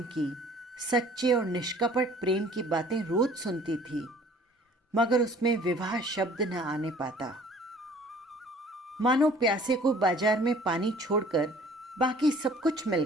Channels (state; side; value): normal; both; correlation 0.52